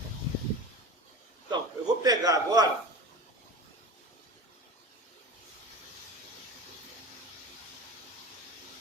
Então, eu vou pegar agora...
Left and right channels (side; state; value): both; normal; correlation 0.32